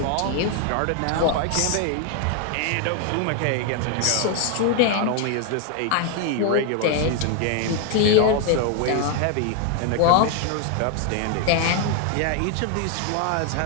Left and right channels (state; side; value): different; both; correlation 0.01